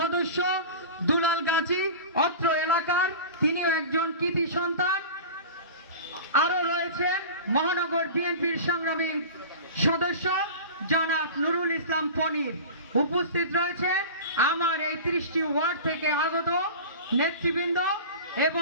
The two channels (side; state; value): both; inverted; correlation -0.33